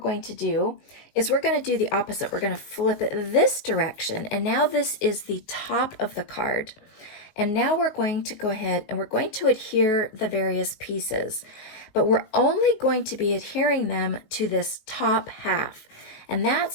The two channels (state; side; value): late; right; 19 ms